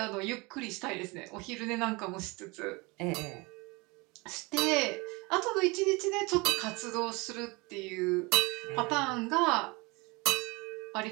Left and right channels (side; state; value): left; quieter; 26.0 dB